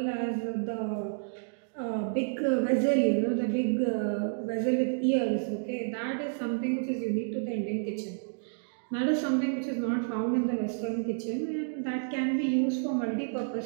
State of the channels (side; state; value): left; silent; digital silence